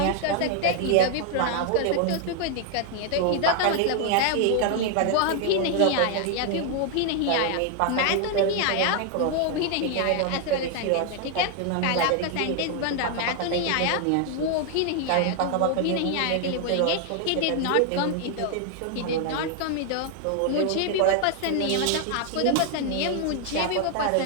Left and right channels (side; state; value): both; different; correlation 0.00